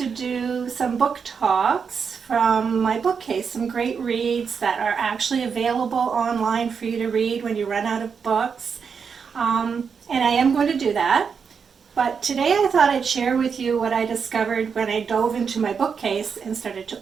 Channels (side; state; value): left; quieter; 6.2 dB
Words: do some book talks from my bookcase, some great reads that are actually available online for you to read when you run out of books. And I am going to do that. But today I thought I'd share with you what I discovered when I dove into my bookcase and started to